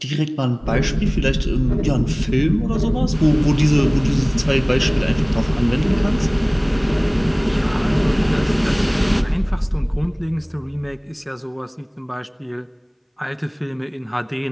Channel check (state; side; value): identical; both; correlation 1.00